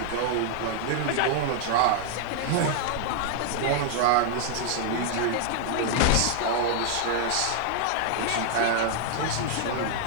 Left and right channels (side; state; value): both; different; correlation -0.01